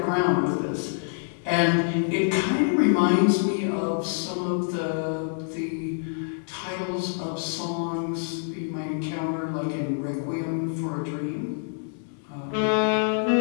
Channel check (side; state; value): right; silent; digital silence